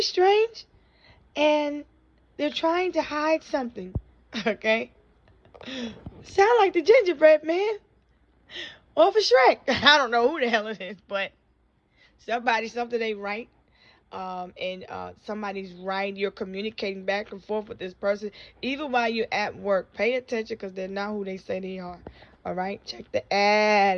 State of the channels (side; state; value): both; identical; correlation 1.00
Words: strange, and they're trying to hide something. Okay, sound like the gingerbread man off of Shrek. I don't know who the hell it is, but something ain't right. And somebody's right. You're communicating back and forth with this person, even while you're at work. Pay attention, because they're not who they say they are. All right, check the